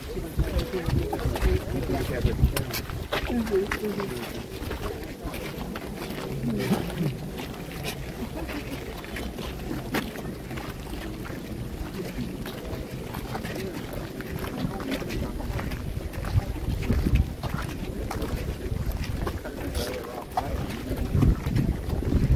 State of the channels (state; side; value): identical; both; correlation 1.00